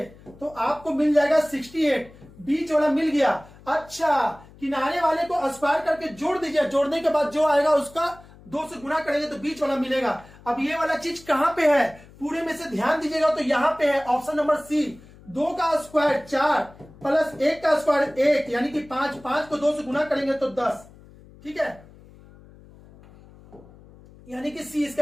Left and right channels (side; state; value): left; noise; hum, 23 dB below the sound